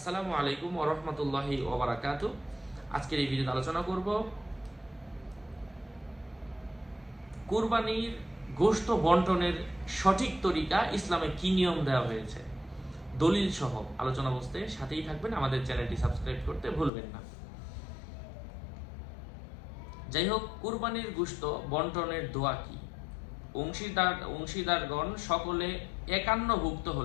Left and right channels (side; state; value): right; drops out; at 16.9 s